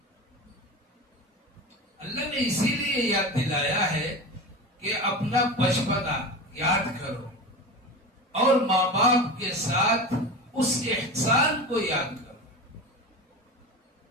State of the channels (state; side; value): normal; both; correlation 0.28